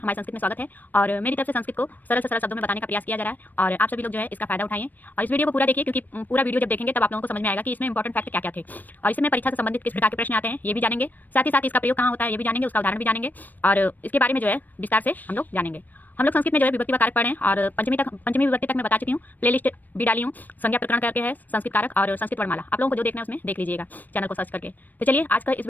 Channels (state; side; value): late; right; 0.087 ms